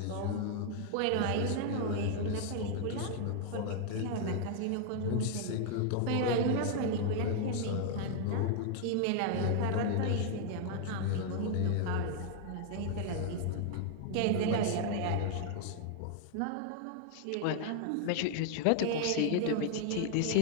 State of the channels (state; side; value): different; both; correlation 0.00